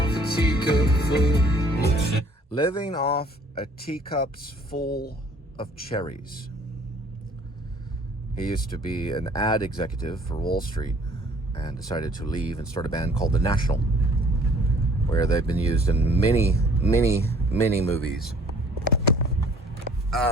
a teacup full. Living off a teacup's full of cherries. He used to be an ad executive for Wall Street and decided to leave and start a band called The National, where they've been used in many movies.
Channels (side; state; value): both; normal; correlation 0.56